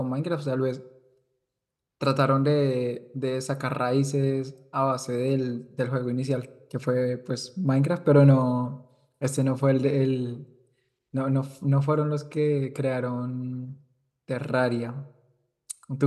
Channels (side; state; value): both; identical; correlation 1.00